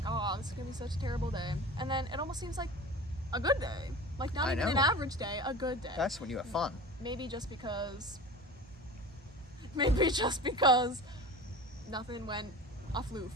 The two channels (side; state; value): both; normal; correlation 0.35